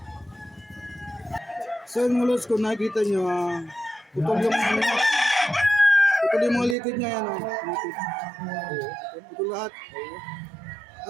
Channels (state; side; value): drops out; left; at 6.8 s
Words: So yung mga lods, kung nakikita nyo, putol yung putol yung mga litid niya yan. Putol lahat.